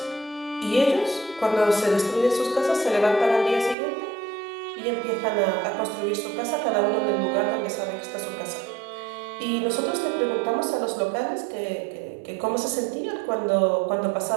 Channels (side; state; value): left; drops out; at 3.8 s